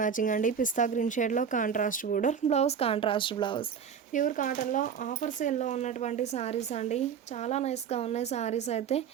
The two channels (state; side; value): quieter; left; 7.3 dB